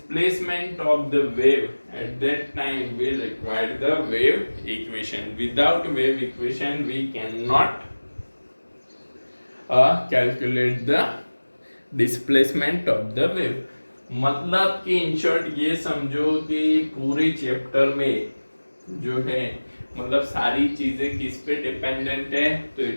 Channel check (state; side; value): inverted; both; correlation -1.00